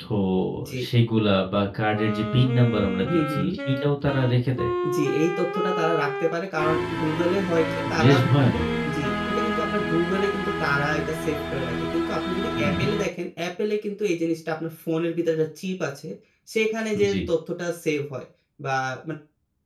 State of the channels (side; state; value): both; identical; correlation 1.00